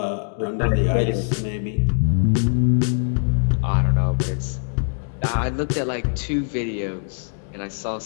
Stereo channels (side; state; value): right; silent; digital silence